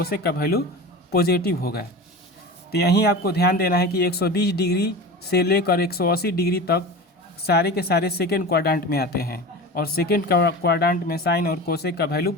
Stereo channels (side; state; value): both; normal; correlation 0.31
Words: का वैल्यू पॉजिटिव होगा। तो यहीं आपको ध्यान देना है कि 120 डिग्री से लेकर 180 डिग्री तक सारे के सारे सेकेंड क्वाड्रेंट में आते हैं और सेकेंड क्वाड्रेंट में साइन और कोसेक का वैल्यू